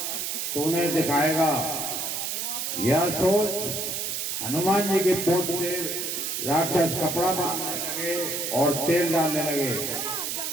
तो उन्हें दिखाएगा। यह सोच हनुमान जी की पोंछ से राक्षस कपड़ा बांधने लगे और तेल डालने लगे।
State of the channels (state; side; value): noise; right; hiss, 2 dB below the sound